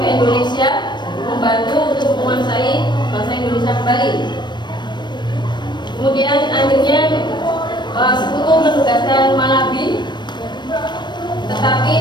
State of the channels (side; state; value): right; late; 0.22 ms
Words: ke Indonesia membantu untuk menguasai bangsa Indonesia kembali. Kemudian akhirnya sekutu menugaskan Malabi, tetapi